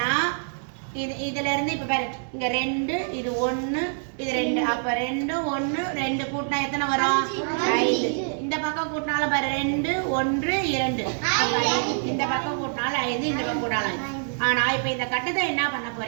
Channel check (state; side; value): silent; left; 61 dB below the other